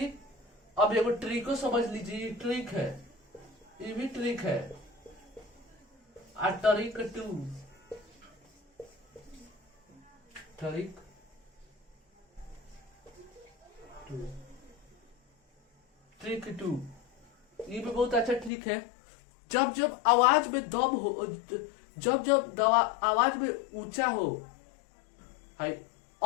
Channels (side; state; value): right; drops out; at 18.5 s